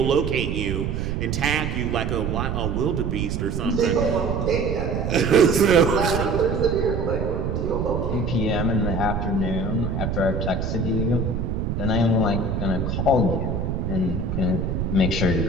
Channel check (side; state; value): right; noise; rumble, 1 dB below the sound